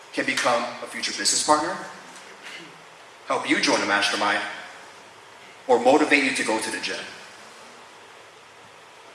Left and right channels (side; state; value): both; identical; correlation 1.00